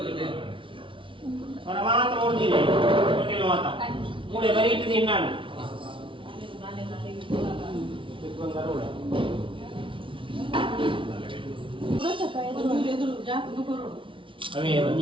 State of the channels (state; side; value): late; left; 0.25 ms